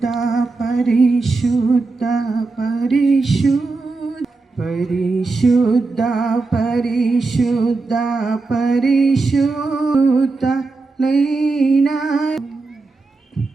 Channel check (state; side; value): quieter; left; 3.7 dB